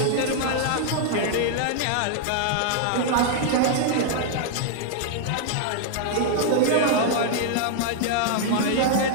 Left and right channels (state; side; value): different; both; correlation -0.01